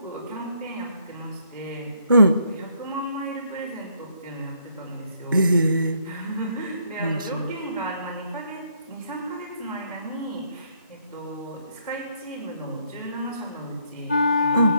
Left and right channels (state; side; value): inverted; both; correlation -0.70